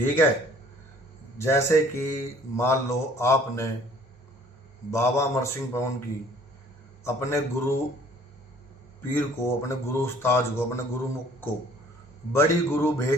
है, जैसे कि मान लो आपने बाबा अमर सिंह पवन की अपने गुरु पीर को, अपने गुरु उस्ताद को, अपने गुरु मुख को बड़ी गुरु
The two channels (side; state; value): both; normal; correlation 0.55